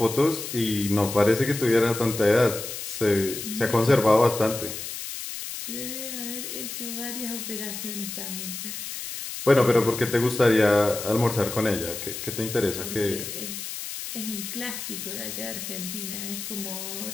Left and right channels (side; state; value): left; noise; hiss, 7 dB below the sound